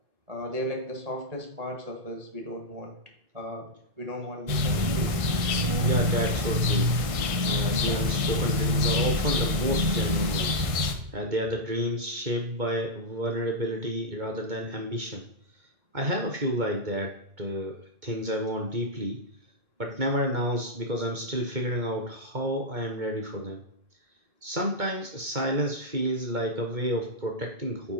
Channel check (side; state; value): left; late; 1.6 ms